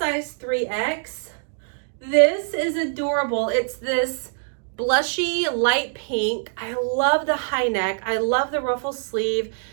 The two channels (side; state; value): left; silent; digital silence